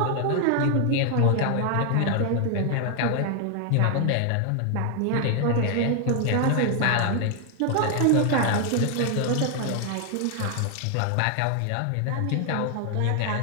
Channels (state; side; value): different; both; correlation 0.00